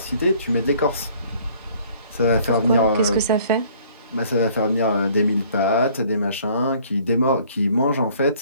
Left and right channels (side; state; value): both; inverted; correlation -0.57